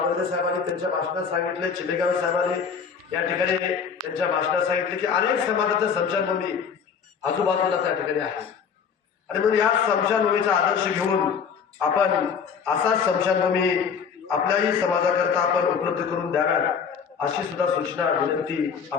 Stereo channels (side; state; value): right; quieter; 6.6 dB